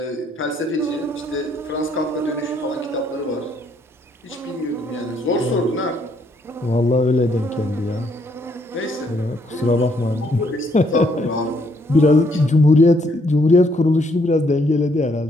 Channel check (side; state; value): both; normal; correlation 0.70